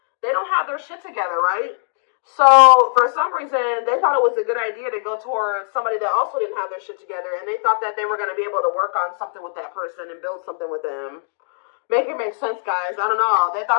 don't have their shit together, right? So, for some reason, they thought it was a good idea to go towards somebody that also didn't have their shit together, and they thought that they were going to be able to work on something with that person and build something with them. Make it make sense, guys. I don't know. They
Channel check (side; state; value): right; silent; digital silence